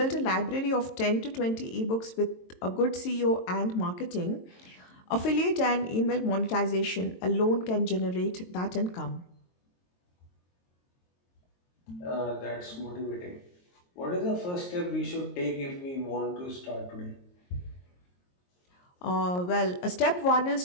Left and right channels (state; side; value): late; right; 22 ms